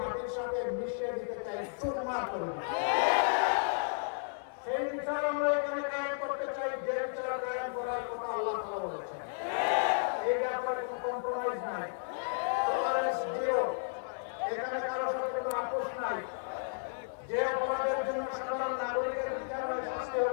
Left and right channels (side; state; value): right; silent; digital silence